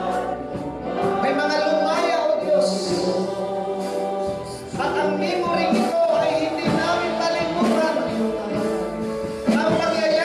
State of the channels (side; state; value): both; identical; correlation 1.00